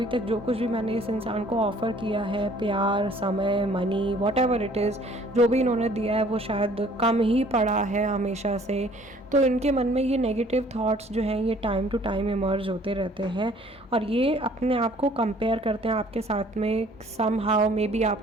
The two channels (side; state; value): both; normal; correlation 0.56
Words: तक जो कुछ भी मैंने इस इंसान को ऑफ़र किया है, प्यार, समय, मनी, व्हाटएवर इट इज़, जो भी इन्होंने दिया है वो शायद कम ही पड़ा है हमेशा से। तो इनके मन में ये नेगेटिव थॉट्स जो हैं ये टाइम टू टाइम इमर्ज होते रहते हैं, और ये अपने आप को कंपेयर करते हैं आपके साथ में। सम हाउ मे बी